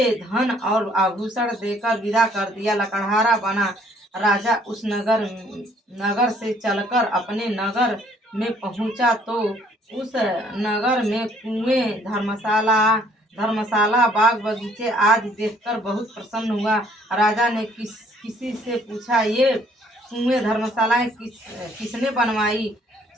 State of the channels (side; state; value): both; normal; correlation 0.62